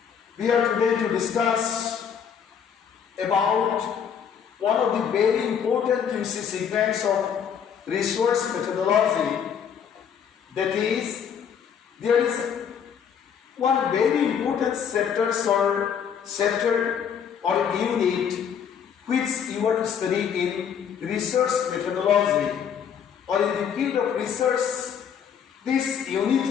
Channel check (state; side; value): quieter; right; 7.8 dB